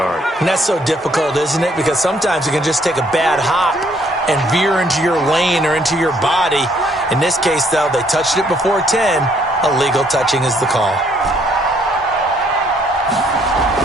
And that's so difficult, isn't it? Because sometimes you can just take a bad hop and veer into your lane or into your body. In this case, though, they touched it before 10. Illegal touching is the call.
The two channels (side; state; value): both; normal; correlation 0.66